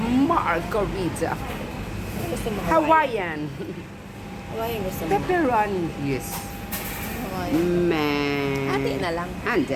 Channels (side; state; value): both; identical; correlation 1.00